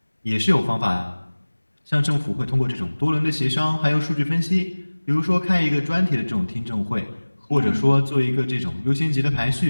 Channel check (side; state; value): both; inverted; correlation -1.00